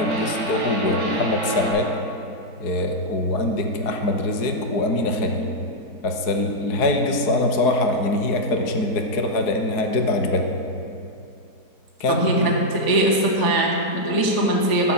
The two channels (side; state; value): right; late; 4.6 ms